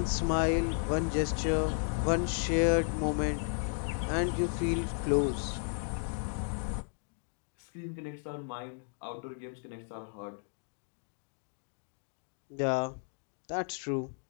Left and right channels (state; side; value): silent; right; 55 dB below the other